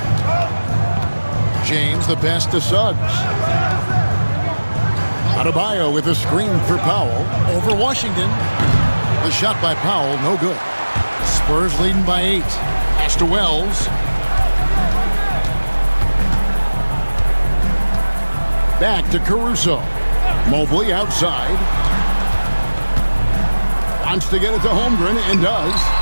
James, the pass to Suggs. Adebayo with a screen for Powell. Over Washington. The shot by Powell, no good. Spurs leading by 8. Pass to Wells. Back to Caruso. Mobley outside. Wants to get it to Holmgren and does.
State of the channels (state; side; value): inverted; both; correlation -1.00